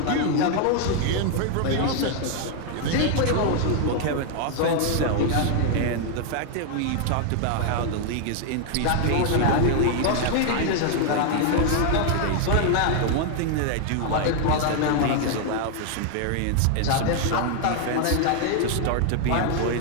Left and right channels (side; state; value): both; different; correlation 0.00